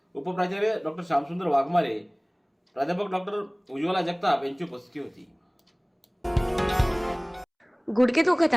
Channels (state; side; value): identical; both; correlation 1.00